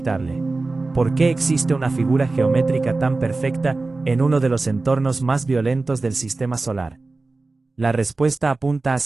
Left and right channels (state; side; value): quieter; left; 3.5 dB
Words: ¿Por qué existe una figura geométrica tan perfecta en uno de los entornos más violentos del sistema solar? La respuesta apunta